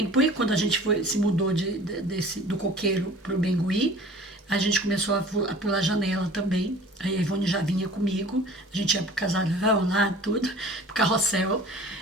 por quando a gente se mudou do Coqueiro para o Bengui, a gente começou a pular janela também. Aí a Ivone já vinha comigo, a gente ia pro casarão lá, tudo, pro carrossel,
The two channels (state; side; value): normal; both; correlation 0.45